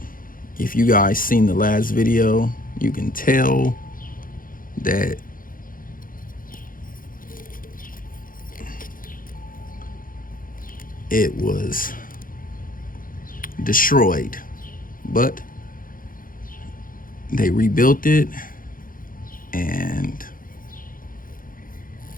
If you guys seen the last video, you can tell that it was destroyed, but they rebuilt it, and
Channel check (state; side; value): late; right; 0.40 ms